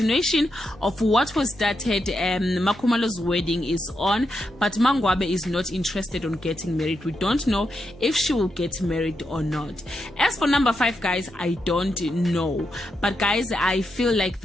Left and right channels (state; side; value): normal; both; correlation 0.84